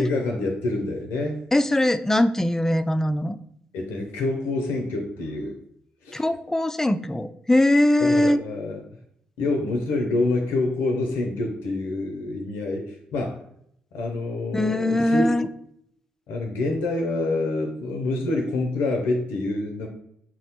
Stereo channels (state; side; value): normal; both; correlation 0.88